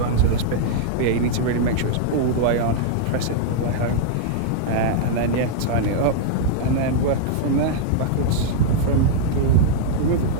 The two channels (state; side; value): different; both; correlation -0.01